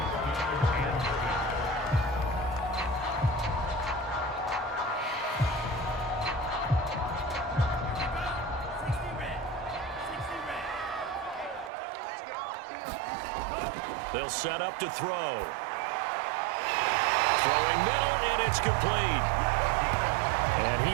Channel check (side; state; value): left; drops out; at 11.7 s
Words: They'll set up to throw. Throwing middle, and it's complete. And